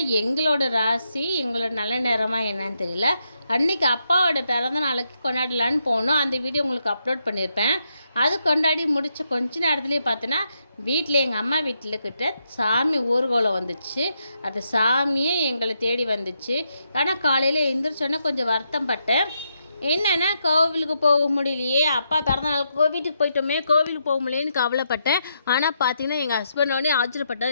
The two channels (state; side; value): inverted; both; correlation -0.81